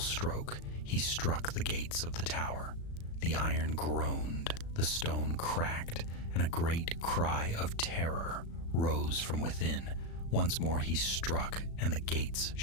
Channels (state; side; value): late; right; 36 ms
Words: he struck the gates of the tower. The iron groaned, the stone cracked, and a great cry of terror rose from within. Once more he struck, and the gates